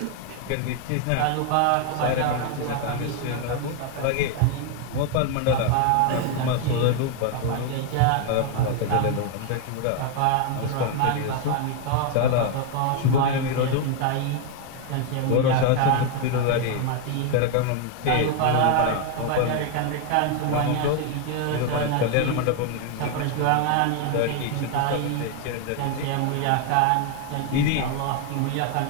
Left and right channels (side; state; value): both; different; correlation 0.01